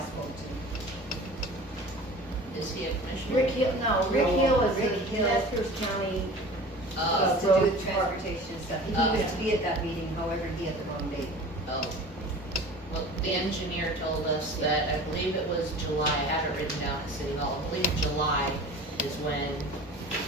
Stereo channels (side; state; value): both; normal; correlation 0.40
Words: to. Is he a commissioner? Rick Hill, no, Rick No, Hill is Rick the Hill. Nez County. It's to do with transportation and stuff. He Oh. was to be at that meeting, however, he had the wrong date. Oh. Well, the engineer told us that, I believe it was July, I had it written down at City Hall, I believe July is when,